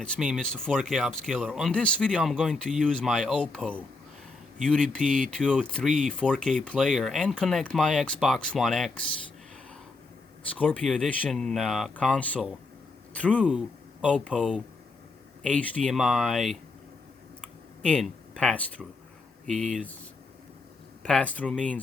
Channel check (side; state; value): right; quieter; 3.5 dB